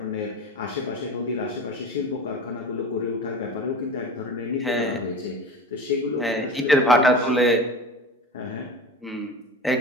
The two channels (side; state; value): both; normal; correlation 0.33